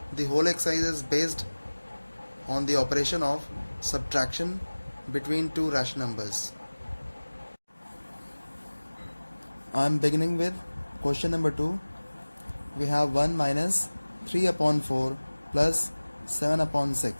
The whole exercise is based on the operation of subtraction between two rational numbers. I am beginning with question number 2. We have 1 minus 3 upon 4 plus 7 upon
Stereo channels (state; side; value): inverted; both; correlation -1.00